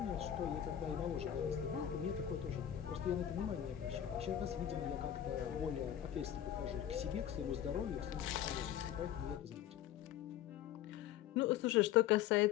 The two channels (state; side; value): quieter; right; 10.7 dB